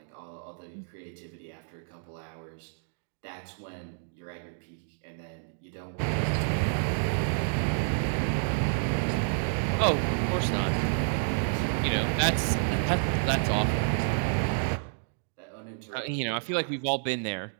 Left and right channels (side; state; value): left; silent; digital silence